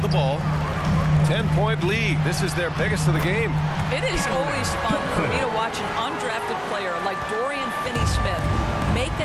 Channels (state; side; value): identical; both; correlation 1.00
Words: the ball. 10-point lead. This is their biggest of the game. It is always fun for me to watch an undrafted player like Dorian Finney-Smith make